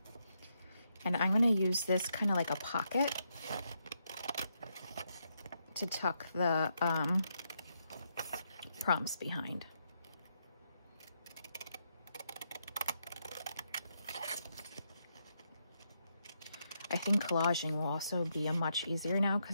And I'm gonna use this kind of like a pocket to tuck the prompts behind. I think collaging will also be a much easier now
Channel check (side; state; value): both; inverted; correlation -0.80